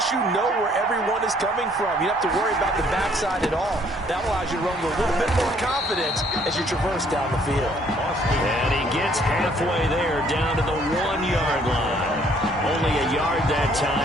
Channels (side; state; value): both; normal; correlation 0.63